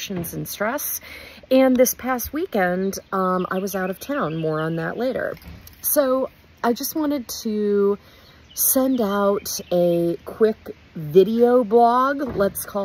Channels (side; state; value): both; identical; correlation 1.00